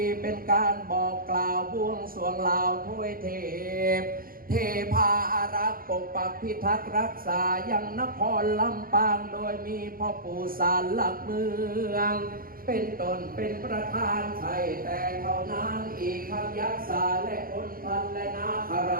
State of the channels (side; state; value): left; late; 0.42 ms